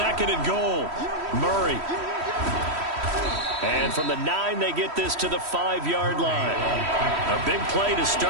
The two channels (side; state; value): left; late; 3.1 ms